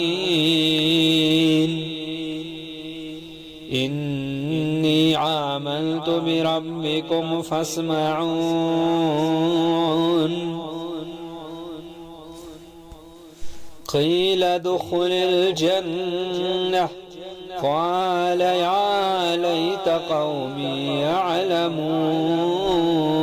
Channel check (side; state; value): both; identical; correlation 1.00